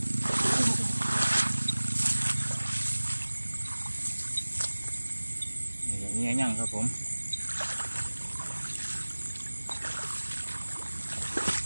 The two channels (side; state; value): both; inverted; correlation -1.00